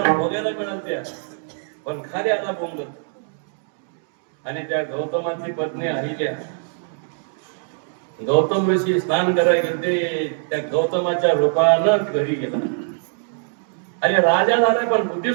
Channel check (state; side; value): silent; left; digital silence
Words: बघायला मिळाल्या, पण खाली आला बोंगत. आणि त्या गौतमाची पत्नी अहिल्या, गौतम ऋषी स्नान करायला गेले, त्या गौतमाच्या रूपानं घरी गेला. अरे राजा झाला पण बुद्धी